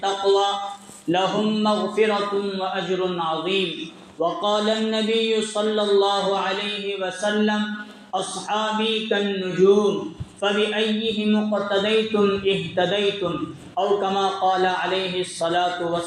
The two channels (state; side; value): identical; both; correlation 1.00